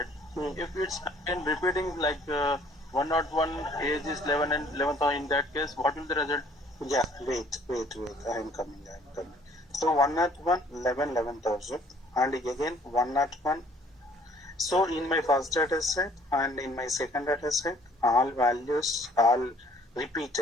if it's again repeating like 101, age is 11 and 11,000, in that case, what will the result? Yeah, wait. I am coming. So 101, 11,000 and again 101. So in my first data set and in my second data set, all values all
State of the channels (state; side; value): normal; both; correlation 0.58